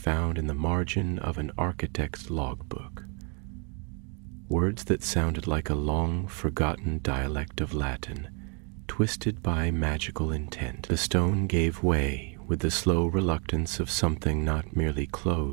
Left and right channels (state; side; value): quieter; left; 36.0 dB